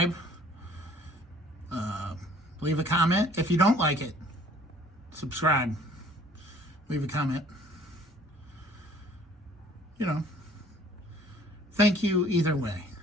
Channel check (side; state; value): both; normal; correlation 0.55